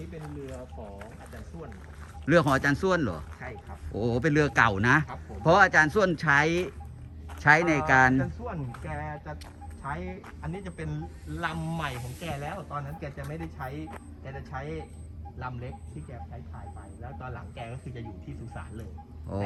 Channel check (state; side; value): identical; both; correlation 1.00